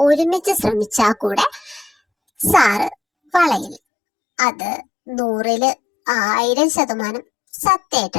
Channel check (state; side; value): drops out; right; at 3.8 s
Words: ഒരുമിച്ച് ശ്രമിച്ചാ കൂടെ സാറ് വളയില്ല. അത് 100%